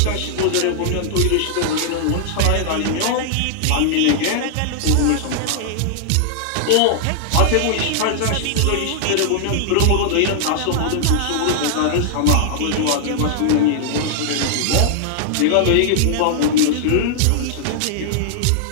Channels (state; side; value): different; both; correlation -0.01